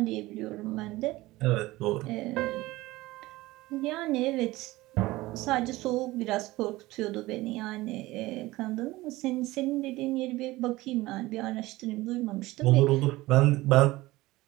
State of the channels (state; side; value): quieter; left; 19.0 dB